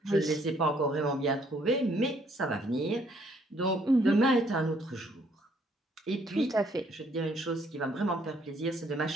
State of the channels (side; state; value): both; normal; correlation 0.66